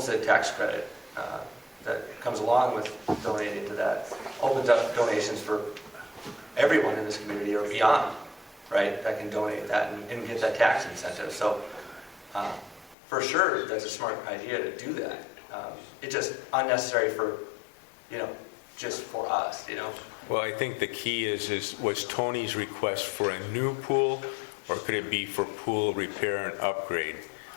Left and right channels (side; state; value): right; drops out; at 13.0 s